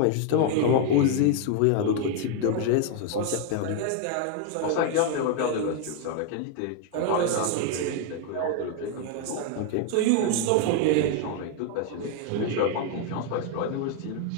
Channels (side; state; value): both; different; correlation 0.00